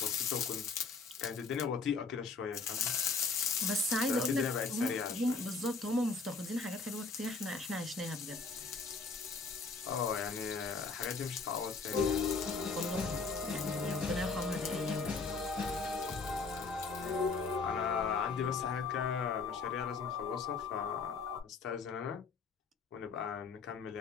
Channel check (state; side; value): quieter; right; 4.4 dB